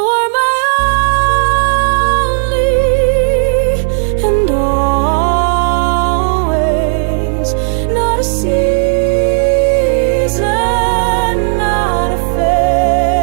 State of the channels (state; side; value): silent; left; 67 dB below the other